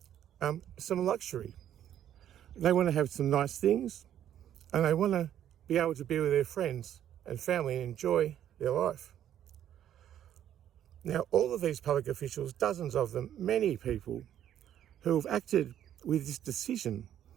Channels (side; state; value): left; quieter; 10.7 dB